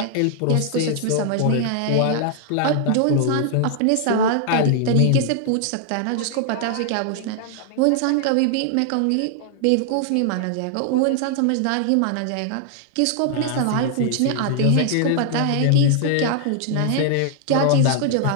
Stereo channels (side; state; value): both; different; correlation 0.00